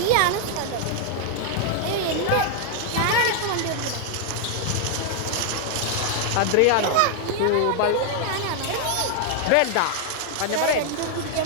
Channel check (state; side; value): different; both; correlation 0.00